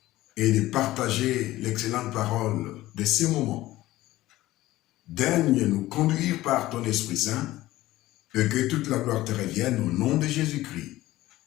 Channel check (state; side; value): quieter; right; 16.6 dB